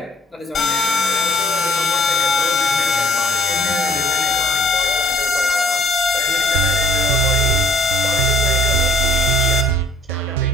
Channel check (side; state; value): both; normal; correlation 0.58